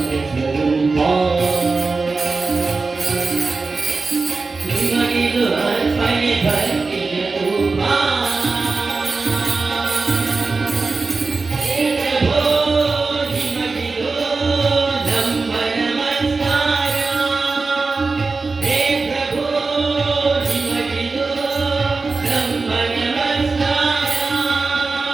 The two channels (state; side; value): quieter; left; 4.1 dB